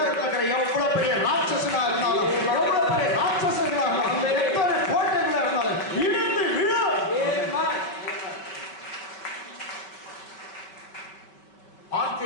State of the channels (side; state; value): right; late; 5.1 ms